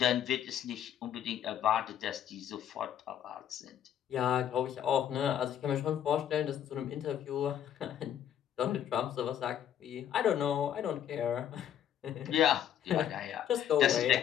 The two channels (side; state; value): right; quieter; 10.0 dB